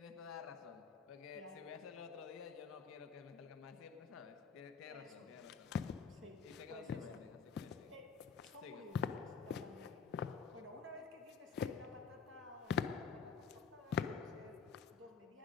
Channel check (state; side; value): quieter; right; 6.0 dB